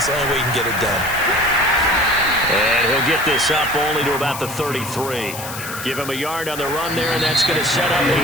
the only way you can get it done. And he'll get this up only to about the 33. Give him a yard on the run there, and that's going to set up a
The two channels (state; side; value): noise; left; hiss, 10 dB below the sound